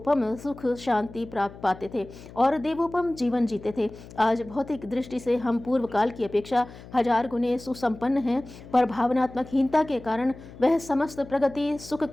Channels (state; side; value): noise; left; hum, 17 dB below the sound